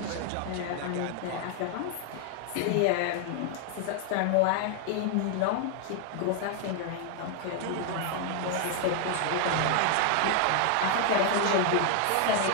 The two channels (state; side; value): different; both; correlation 0.00